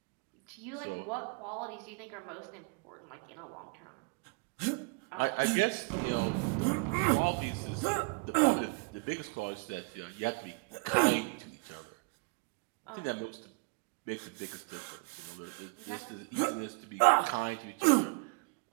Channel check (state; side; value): quieter; left; 31.2 dB